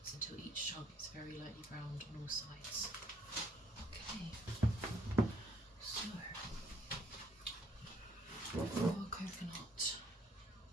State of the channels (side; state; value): both; normal; correlation 0.65